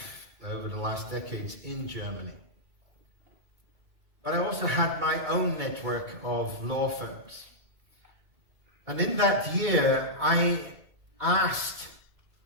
over the last decades in Germany. But I also had my own network of law firms. And in that year, I asked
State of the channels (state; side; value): late; left; 2.2 ms